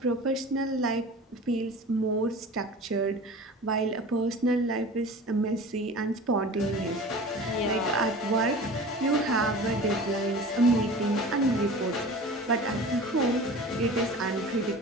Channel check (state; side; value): normal; both; correlation 0.38